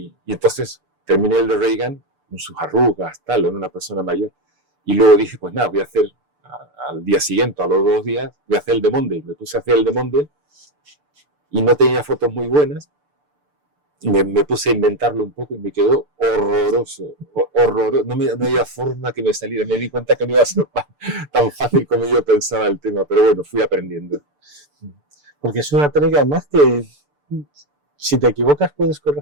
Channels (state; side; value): late; left; 6.8 ms